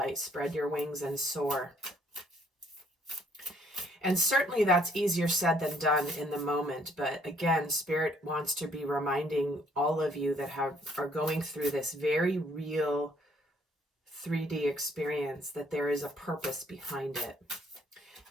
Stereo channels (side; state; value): both; normal; correlation 0.64